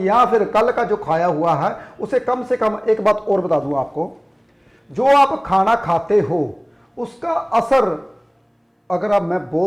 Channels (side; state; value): both; identical; correlation 1.00